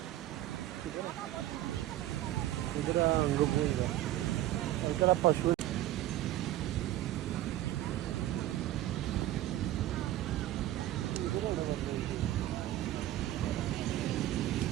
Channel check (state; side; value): quieter; left; 14.4 dB